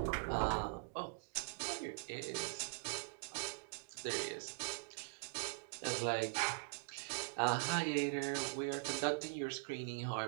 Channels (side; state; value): left; silent; digital silence